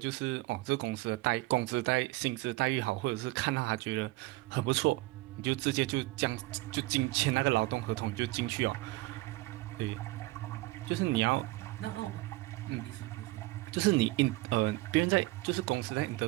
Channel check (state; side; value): quieter; left; 20.5 dB